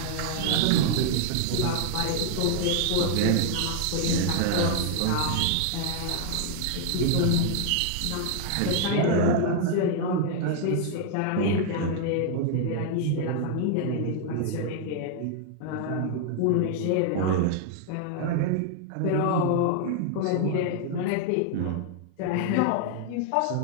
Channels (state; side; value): different; both; correlation 0.00